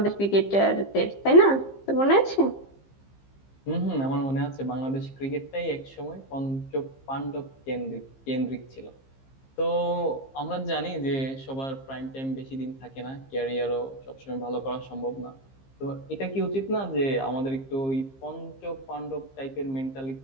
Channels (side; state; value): right; late; 15 ms